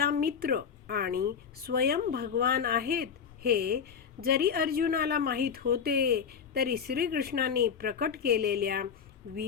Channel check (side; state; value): right; quieter; 6.9 dB